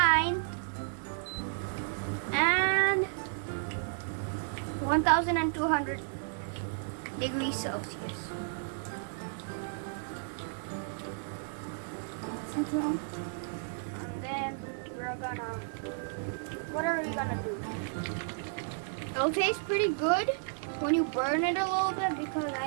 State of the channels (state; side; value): silent; left; digital silence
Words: And 1,200 degrees Celsius. Then we're gonna, what are we gonna do? It'll taste pretty good when you burn it a little bit, because